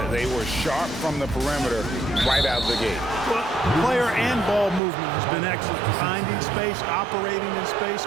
They were sharp from the perimeter right out of the gate. Well, player and ball movement has been excellent. Finding space, operating in space,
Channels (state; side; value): drops out; left; at 4.8 s